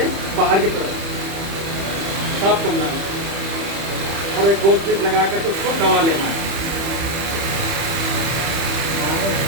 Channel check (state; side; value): late; left; 30 ms